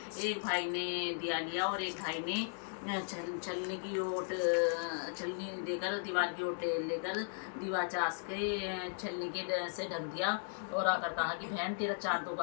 एक भाई ने दिया लिया और एक भाई ने छलनी की ओट छलनी देकर दीवार की ओट लेकर दीवार चास के छलनी के से ढक दिया और आकर कहा कि बहन तेरा चाँद तो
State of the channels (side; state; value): right; silent; digital silence